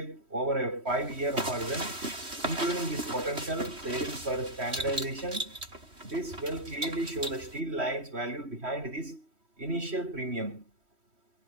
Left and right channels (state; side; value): late; left; 3.1 ms